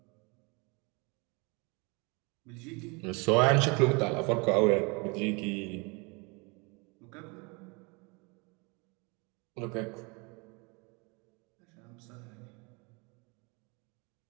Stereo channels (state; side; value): quieter; left; 29.7 dB